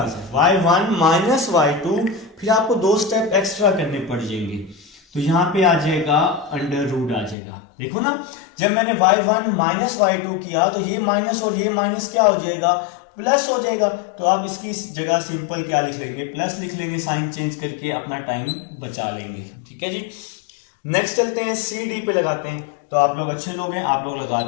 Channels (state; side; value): drops out; right; at 7.4 s